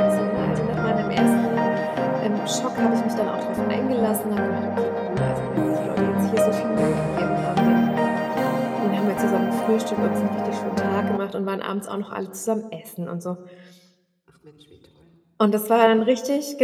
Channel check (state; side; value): identical; both; correlation 1.00